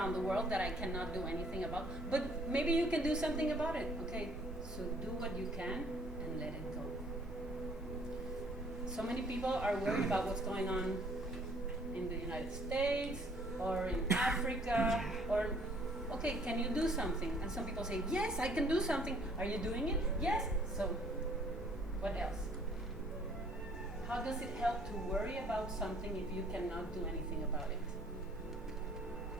the world that I cannot do anything about. But maybe you can do something about it, okay? So do what you can and let it go. So many people are worried about what's going on in the United States or in Africa or, okay, can you do something? And some people say, yes, I can do something. Are you doing it? Yes. So what else? How does it help to worry about something if you cannot do anything about it?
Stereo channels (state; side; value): normal; both; correlation 0.60